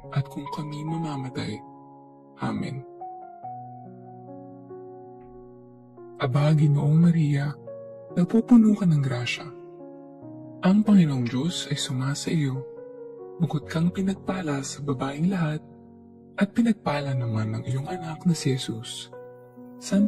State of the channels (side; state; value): both; identical; correlation 1.00